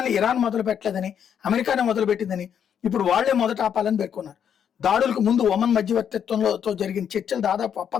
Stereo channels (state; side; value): quieter; right; 8.4 dB